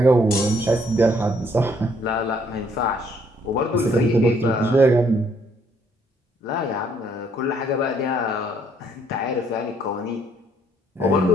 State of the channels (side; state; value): both; normal; correlation 0.66